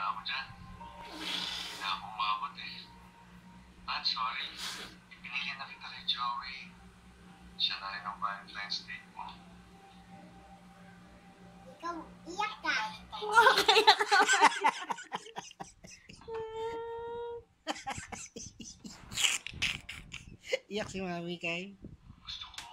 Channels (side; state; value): both; identical; correlation 1.00